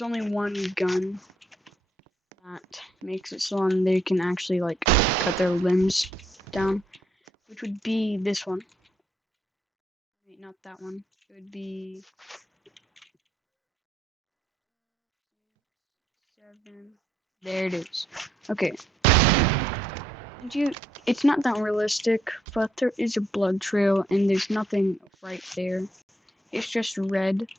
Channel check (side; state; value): both; normal; correlation 0.74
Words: only one gun that makes it so they can actually like cut their limbs down, which would be this one. Wait, not that one. It would be 7. There it is. Okay. And it's not that realistic, but there is a blood trail, and there's nothing right there. It's just red.